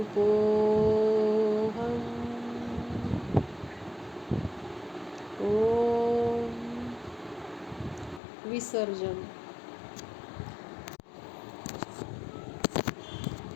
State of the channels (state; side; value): drops out; right; at 8.2 s